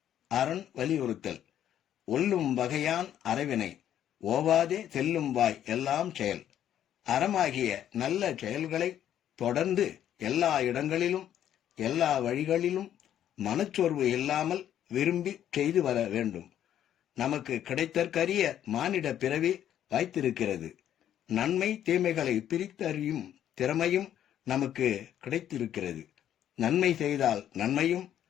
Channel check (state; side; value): quieter; right; 10.7 dB